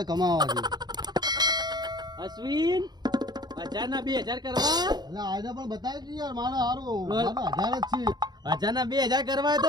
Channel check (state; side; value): late; left; 0.20 ms